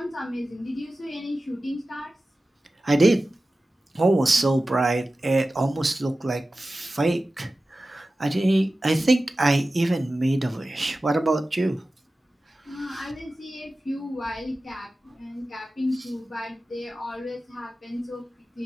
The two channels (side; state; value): both; normal; correlation 0.95